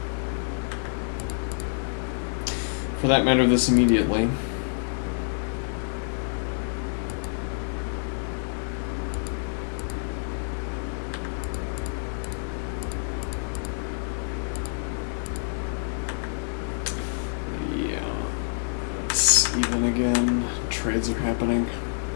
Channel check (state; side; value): silent; right; 60 dB below the other